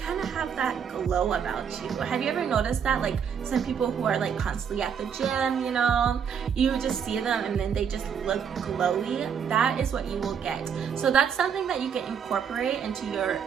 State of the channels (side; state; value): left; quieter; 7.4 dB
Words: of have that glow about you. Have you ever noticed that? Like some people who are like constantly at the gym, you know, you just see them and then they just look glowy. That is what you will get. So that's something that you can incorporate into your